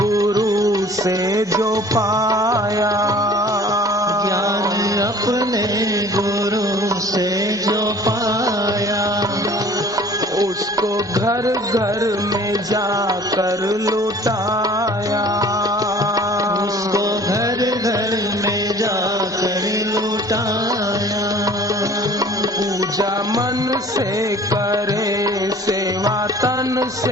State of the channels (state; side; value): normal; both; correlation 0.49